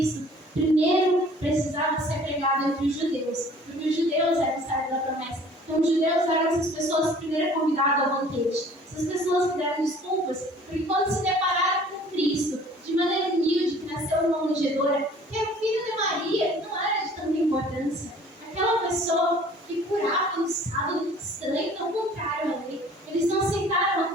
primeiro precisava ser pregado entre os judeus, porque os judeus eram o servo da promessa. Então, os judeus eram essas pessoas primeiro convidadas ao banquete. Essas pessoas que deram desculpas, porque quando se depararam com Cristo, de maneira humilde, que nasceu numa manjedoura, que é o filho de Maria, que não era de tanta importância. Aquela pessoa que curava no sábado estranho, não contrário a lei. Eles não aceitaram a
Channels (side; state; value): both; normal; correlation 0.51